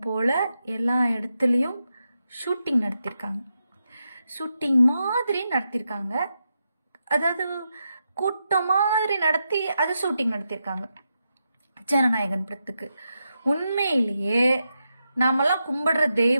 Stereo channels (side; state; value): both; inverted; correlation -0.86